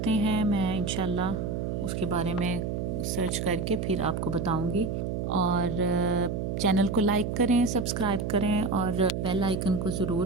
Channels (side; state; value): right; noise; hum, 2 dB below the sound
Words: ہیں، میں انشاءاللہ اس کے بارے میں سرچ کر کے پھر آپ کو بتاؤں گی۔ اور چینل کو لائک کریں، سبسکرائب کریں اور بیل آئیکن کو